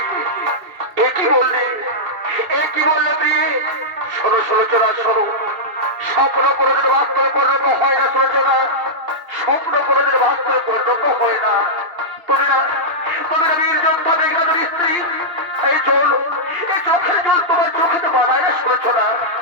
একই বললে প্রিয়ে? শোনো সলোচনা শোনো, স্বপ্ন কোনোদিন বাস্তবে পরিণত হয় না সলোচনা, স্বপ্ন কোনোদিন বাস্তবে পরিণত হয় না। তুমি না বীর যোদ্ধা মেঘনাদের স্ত্রী, এই জল এই চোখের জল তোমার চোখে তো মানায় না সলোচনা।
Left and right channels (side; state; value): left; late; 2.7 ms